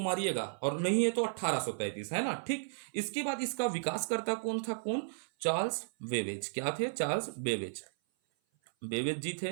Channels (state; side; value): silent; left; 55 dB below the other